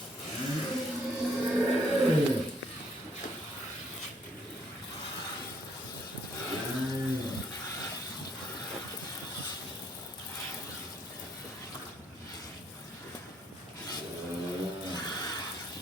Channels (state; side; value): normal; both; correlation 0.68